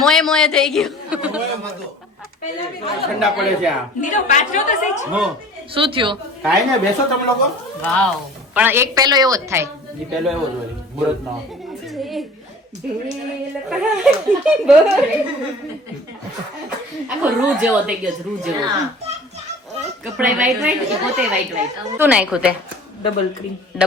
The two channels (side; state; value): both; normal; correlation 0.45